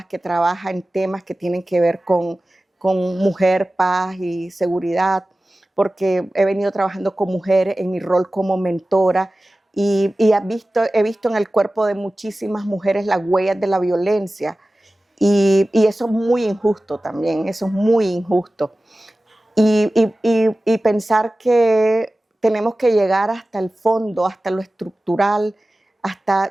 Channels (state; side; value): normal; both; correlation 0.96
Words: que trabaja en temas que tienen que ver con mujer, paz y seguridad, porque he venido trabajando con mujeres en mi rol como mentora y he visto en el cuerpo de muchísimas mujeres las huellas de la violencia. Y eso es muy injusto también, eso es muy injusto. Y pensar que tenemos que llegar hasta el fondo, hasta lo estructural,